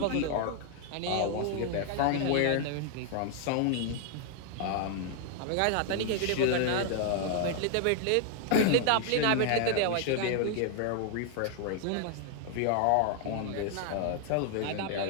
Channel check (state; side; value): different; both; correlation 0.00